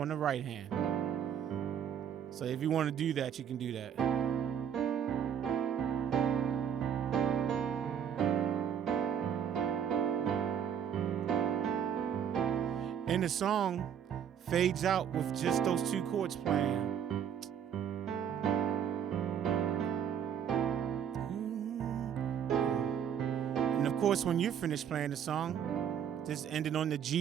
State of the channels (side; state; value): left; quieter; 8.6 dB